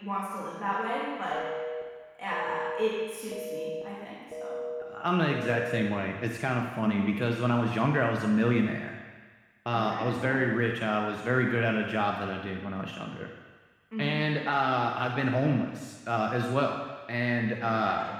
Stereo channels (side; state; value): both; identical; correlation 1.00